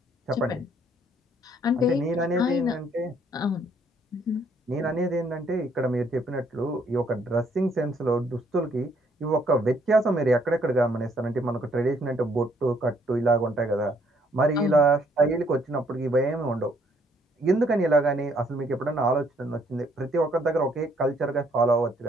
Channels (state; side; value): normal; both; correlation 0.67